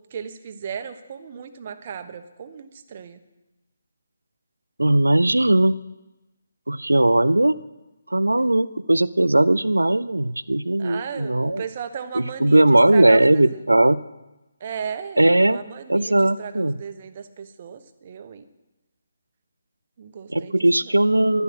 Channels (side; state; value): both; inverted; correlation -0.99